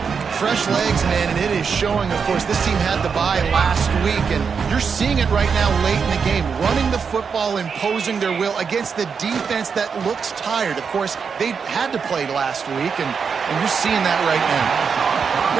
Fresh legs, man, and it is showing, of course. This team had the bye last week, and you're seeing it right now late in the game. Running the football, imposing their will against the defense that looks tired. Of course, they had to play last week, and you're seeing that right now.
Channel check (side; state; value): left; quieter; 6.0 dB